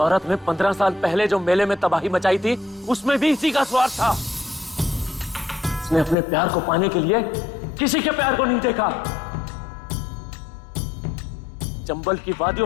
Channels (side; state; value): right; drops out; at 6.2 s